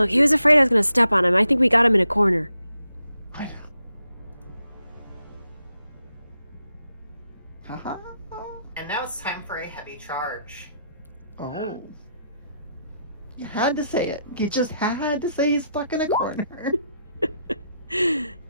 he was afraid I was going to step on him. I think we got him in a corner. I know. Haha. And now it's time for a heavy charge. Oh. You had to say it. You just had to say he's stuck in a corner.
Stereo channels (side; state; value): both; inverted; correlation -0.81